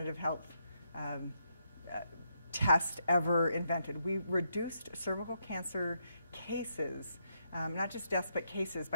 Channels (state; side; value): inverted; both; correlation -0.79